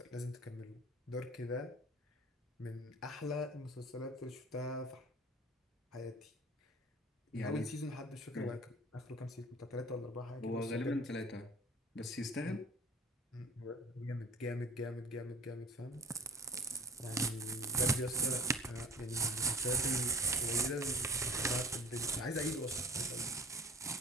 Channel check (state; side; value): normal; both; correlation 0.40